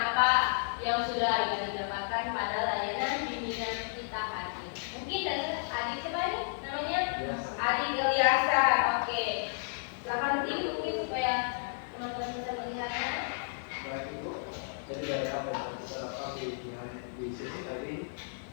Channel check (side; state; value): right; silent; digital silence